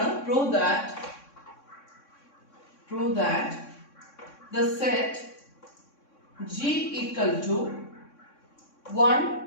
prove that the set G equal to 1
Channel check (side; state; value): right; late; 3.6 ms